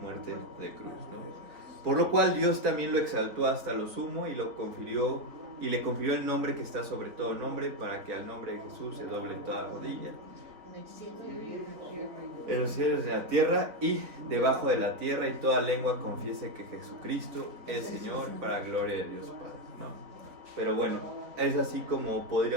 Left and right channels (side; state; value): left; late; 3.9 ms